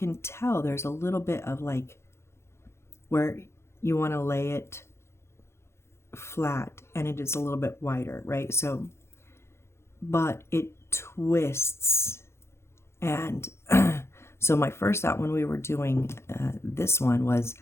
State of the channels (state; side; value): late; right; 0.13 ms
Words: tell there's a little bit of like where you want to lay it flat and it is a little bit wider, right? So, but it twists. And so my first thought when we were doing this one was